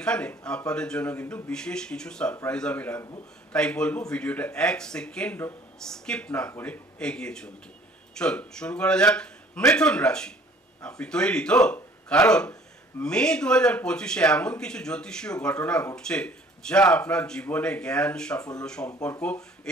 আপনাদের জন্য কিন্তু বিশেষ কিছু সারপ্রাইজ আমি রাখবো, তাই বলবো ভিডিওটা এক সেকেন্ডও স্কিপ না করে এগিয়ে চলতে। চলুন শুরু করা যাক। মিথুন রাশি, আপনি তৈরি তো? কারণ মে 2025-এ এমন কিছু জ্যোতিষীয় ঘটনা ঘটছে যা আপনার জীবনে জ্ঞান, সাফল্য, সম্পর্ক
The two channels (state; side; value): normal; both; correlation 0.54